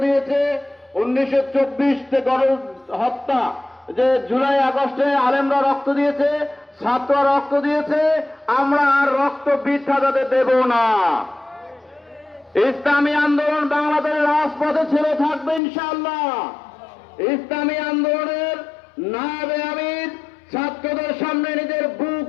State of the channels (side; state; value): right; drops out; at 15.6 s